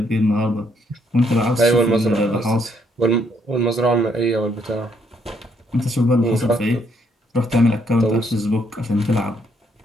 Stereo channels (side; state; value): both; normal; correlation 0.71